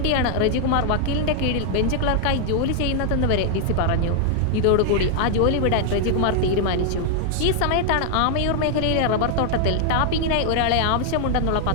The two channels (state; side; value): different; both; correlation 0.00